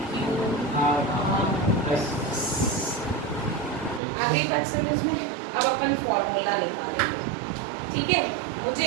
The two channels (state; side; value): drops out; left; at 4.0 s